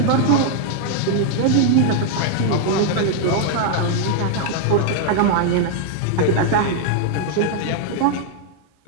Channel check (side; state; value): both; different; correlation 0.00